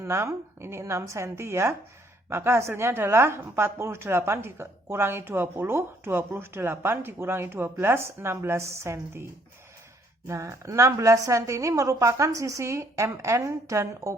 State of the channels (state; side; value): normal; both; correlation 0.66